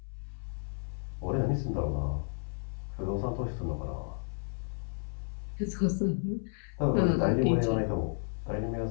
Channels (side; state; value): right; silent; 56 dB below the other